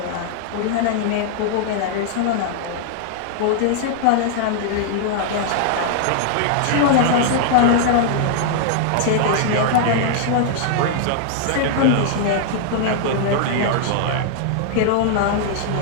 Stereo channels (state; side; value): different; both; correlation -0.01